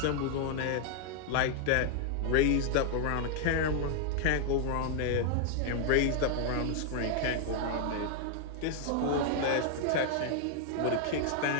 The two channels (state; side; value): different; both; correlation 0.00